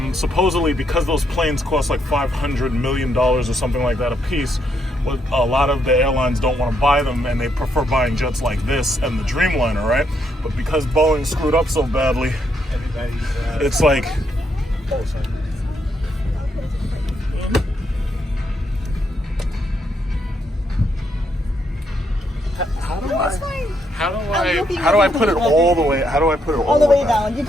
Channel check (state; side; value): normal; both; correlation 0.76